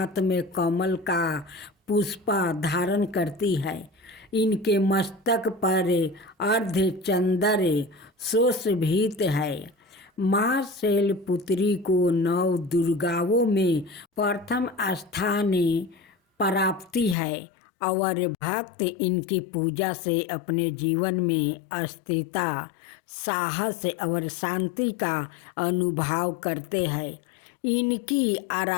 में कमल का पुष्पा धारण करती है। इनके मस्तक पर अर्धचंद्र सुशोभित है। माँ शैलपुत्री को नव दुर्गाओं में प्रथम स्थान प्राप्ति है और भक्त इनकी पूजा से अपने जीवन में स्थिरता, साहस और शांति का अनुभव करते हैं। इनकी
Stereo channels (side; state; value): right; drops out; at 17.2 s